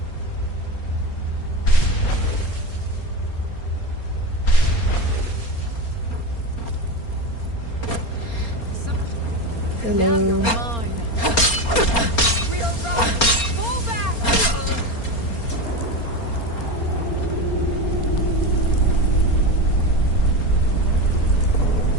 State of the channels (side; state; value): right; late; 4.3 ms